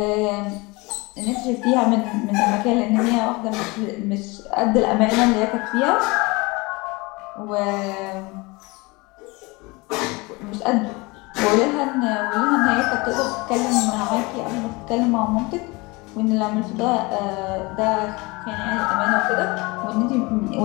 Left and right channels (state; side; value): quieter; right; 24.9 dB